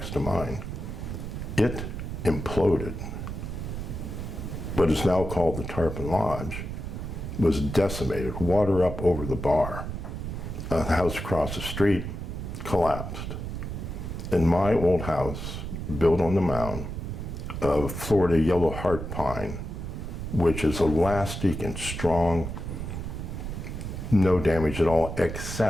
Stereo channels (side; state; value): right; noise; rumble, 6 dB below the sound